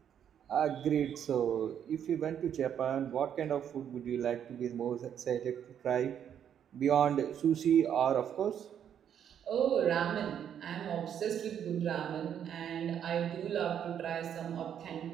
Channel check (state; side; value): quieter; left; 9.1 dB